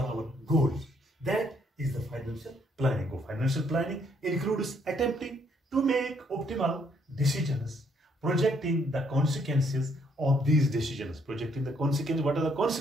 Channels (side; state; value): both; normal; correlation 0.69